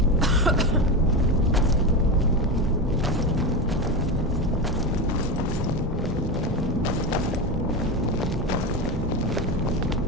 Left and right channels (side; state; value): both; normal; correlation 0.17